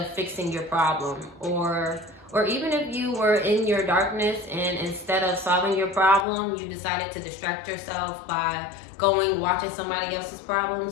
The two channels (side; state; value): right; drops out; at 6.2 s